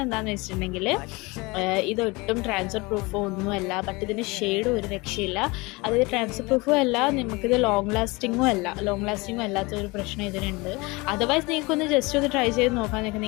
എന്താണെന്ന് വെച്ചിട്ടുണ്ടെങ്കിൽ ഇതൊട്ടും ട്രാൻസ്ഫർ പ്രൂഫോ ഒന്നുമല്ല. ബട്ട് ഇതിൻ്റെ ഷെയ്ഡ് ഒരു രക്ഷയില്ല. അതായത് ട്രാൻസ്ഫർ പ്രൂഫും അല്ല, നമുക്കിത് ലോങ് ലാസ്റ്റിങ്ങും അല്ലാത്തൊരു പ്രശ്നം ഇതിനുണ്ട്. അതർവൈസ് നിങ്ങൾക്കൊന്ന് ജസ്റ്റ് ഒന്ന് ട്രൈ ചെയ്ത് നോക്കാൻ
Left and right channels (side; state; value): right; quieter; 24.8 dB